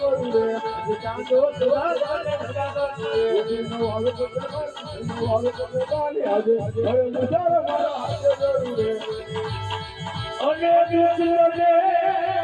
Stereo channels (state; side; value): identical; both; correlation 1.00